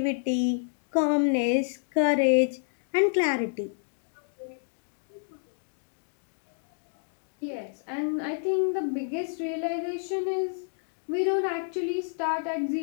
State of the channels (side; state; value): right; silent; digital silence